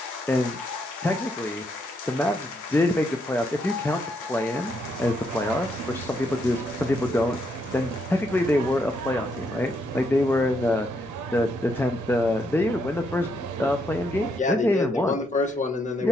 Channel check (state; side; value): normal; both; correlation 0.76